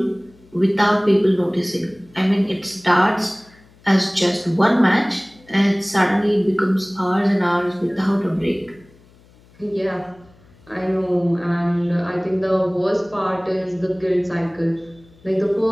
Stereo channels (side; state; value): left; noise; hum, 28 dB below the sound